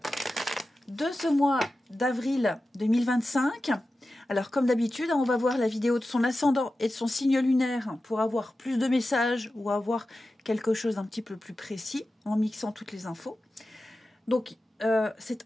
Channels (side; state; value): both; normal; correlation 0.93